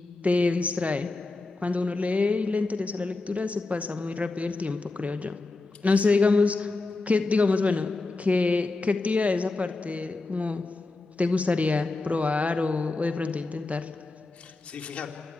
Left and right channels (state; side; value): quieter; right; 3.4 dB